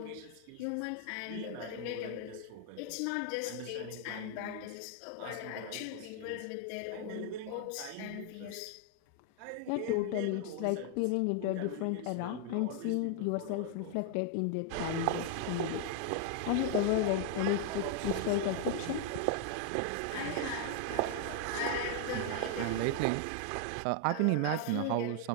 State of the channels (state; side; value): different; both; correlation 0.00